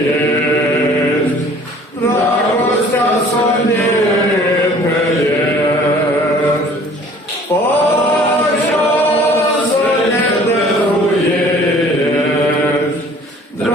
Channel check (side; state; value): both; normal; correlation 0.52